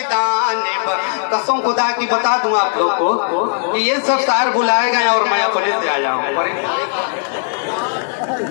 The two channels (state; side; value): silent; right; digital silence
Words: कसम खुदा की बता दूं आप लोग को कि ये सब शायर बुलाए गए और मैं अपने से आया हूँ।